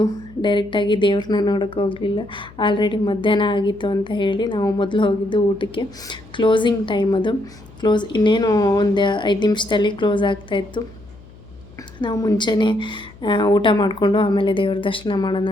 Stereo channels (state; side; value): noise; left; hum, 21 dB below the sound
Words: ಡೈರೆಕ್ಟಾಗಿ ದೇವ್ರನ್ನ ನೋಡೋಕ್ಕೆ ಹೋಗಲಿಲ್ಲ. ಆಲ್ರೆಡಿ ಮಧ್ಯಾಹ್ನ ಆಗಿತ್ತು ಅಂತ ಹೇಳಿ ನಾವು ಮೊದಲು ಹೋಗಿದ್ದು ಊಟಕ್ಕೆ. ಕ್ಲೋಸಿಂಗ್ ಟೈಮ್ ಅದು. ಇನ್ನೇನು ಒಂದು 5 ನಿಮಿಷದಲ್ಲಿ ಕ್ಲೋಸ್ ಆಗ್ತಾಯಿತ್ತು. ನಾವು ಮುಂಚೆನೇ ಊಟ ಮಾಡಿಕೊಂಡು ಆಮೇಲೆ ದೇವ್ರ ದರ್ಶನ ಮಾಡೋಣ